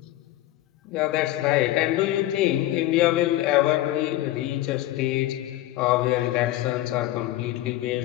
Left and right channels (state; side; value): quieter; right; 15.3 dB